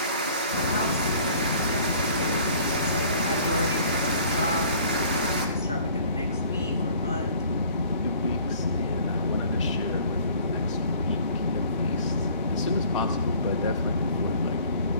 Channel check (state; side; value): inverted; both; correlation -0.52